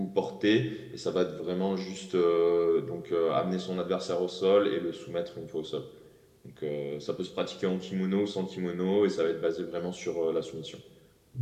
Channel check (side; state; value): both; identical; correlation 1.00